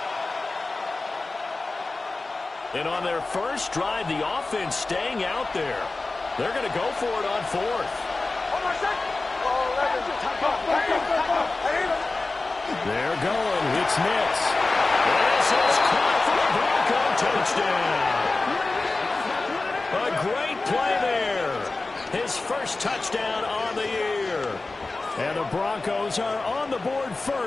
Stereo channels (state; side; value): quieter; right; 3.4 dB